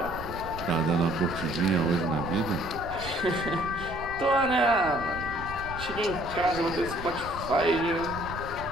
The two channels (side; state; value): right; noise; rumble, 12 dB below the sound